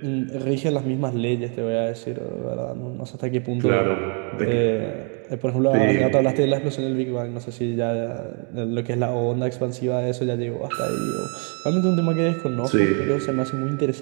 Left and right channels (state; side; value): quieter; left; 39.2 dB